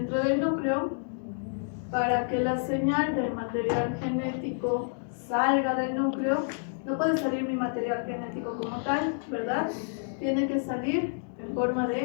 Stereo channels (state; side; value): silent; right; digital silence